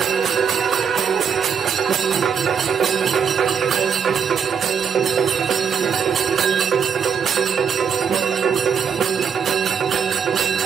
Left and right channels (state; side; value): quieter; left; 7.0 dB